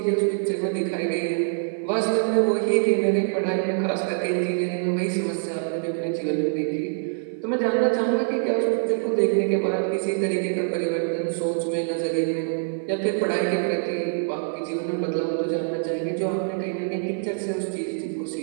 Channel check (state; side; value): silent; left; 56 dB below the other